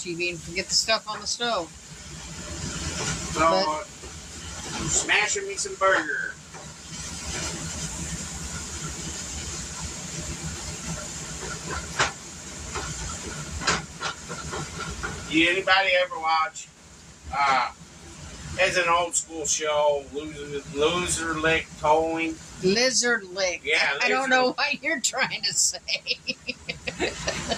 and forget the stuff on the stove. So, I'm smashing me some burger. Did anybody ever watch? It's an old school show, Loser Lick Towing. Lizard lick. Yeah, I don't know what you're trying to say.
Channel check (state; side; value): identical; both; correlation 1.00